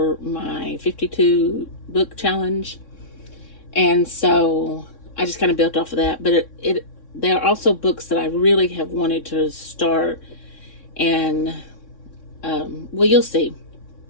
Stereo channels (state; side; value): late; right; 3.6 ms